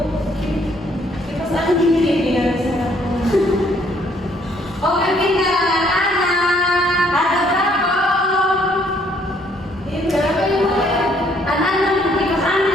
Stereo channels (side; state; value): both; normal; correlation 0.65